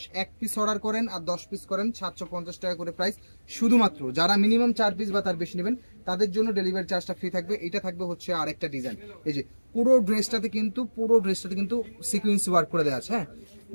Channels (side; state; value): both; inverted; correlation -1.00